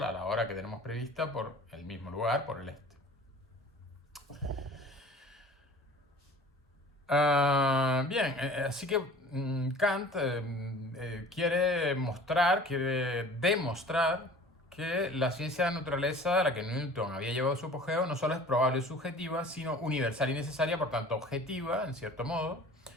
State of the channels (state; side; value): normal; both; correlation 0.45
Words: a la hora que tenemos prevista por el mismo lugar, por el este. Bien, así que Kant quiere demostrar que la ciencia de la naturaleza a la que Newton había llevado su apogeo no solo es probable y subjetiva, sino universal y necesaria, por tanto objetiva, en cierto modo.